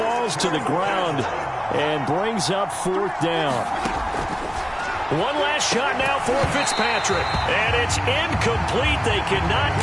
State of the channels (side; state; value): both; identical; correlation 1.00